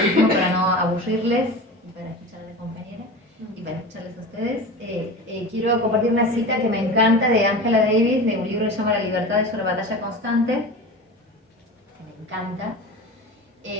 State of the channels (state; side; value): normal; both; correlation 0.31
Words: último, para no aburrirles y para escuchar a la compañera y para escucharles a ustedes, quiero compartir una cita que me encanta de Angela Davis, de un libro que se llama La libertad es una batalla constante, que me encanta.